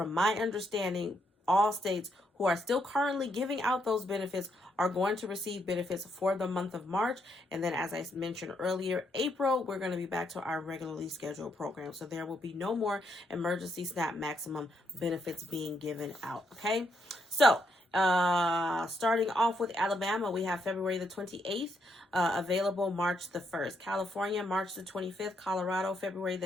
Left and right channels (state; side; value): normal; both; correlation 0.77